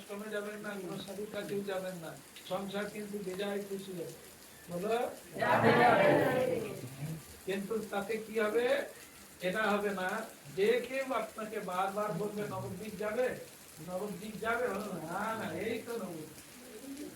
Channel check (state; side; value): identical; both; correlation 1.00